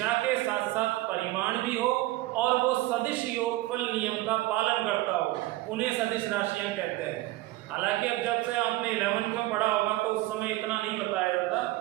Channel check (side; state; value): left; quieter; 18.0 dB